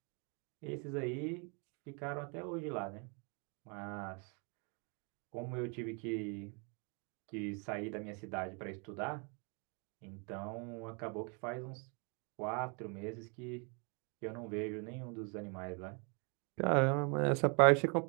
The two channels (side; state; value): left; quieter; 35.3 dB